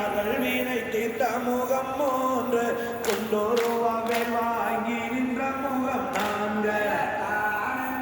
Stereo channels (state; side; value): identical; both; correlation 1.00